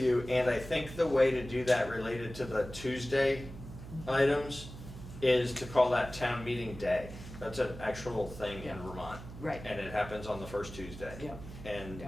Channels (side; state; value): right; noise; hum, 13 dB below the sound